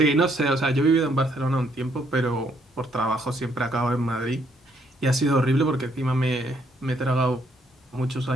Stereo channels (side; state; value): both; normal; correlation 0.70